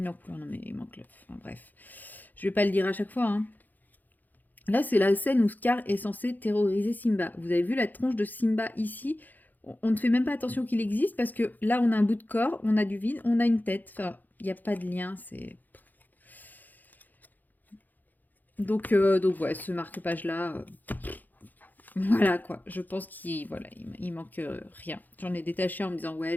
en couleur. Non mais il manque le... Enfin, bref. Je vais pas le dire à chaque fois, hein. Là, c'est la scène où Scar est censé terroriser Simba. Vous avez vu la tronche de Simba ici? On ne fait même pas attention qu'il existe parce que là, on a un bout de corps, on a du vide, on a une tête. Enfin, il n'y a pas de lien, c'est... Donc ouais, ce marque-page-là... Voilà, quoi. Je pense qu'il manque rien. J'en ai détaché en me disant, ouais,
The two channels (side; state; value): right; late; 0.084 ms